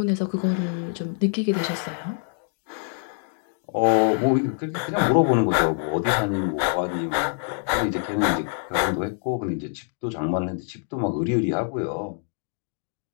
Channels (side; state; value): right; silent; 58 dB below the other